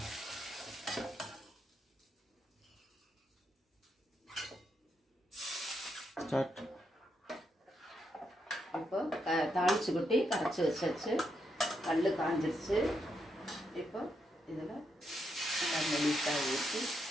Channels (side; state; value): both; normal; correlation 0.81